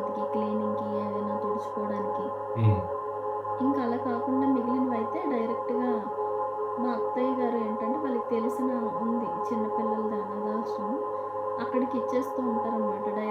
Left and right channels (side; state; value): both; identical; correlation 1.00